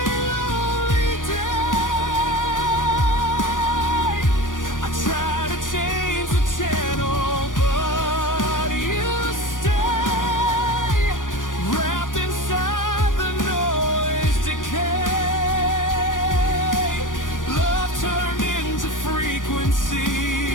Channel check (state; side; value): late; right; 0.88 ms